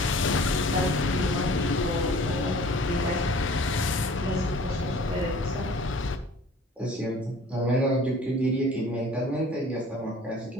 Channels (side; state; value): both; normal; correlation 0.48